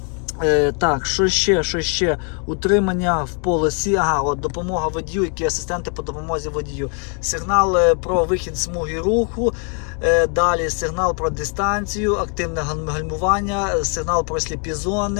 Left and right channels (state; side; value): quieter; right; 39.1 dB